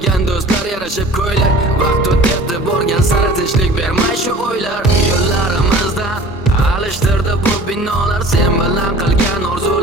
do'stlar yarashib ko'ylak. Vaqt o'tdi borgan sari tinchlik bermay shu o'ylar. Yo'llarimizdan alishtirdi bu binolar, sen bilan qilgan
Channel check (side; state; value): both; normal; correlation 0.45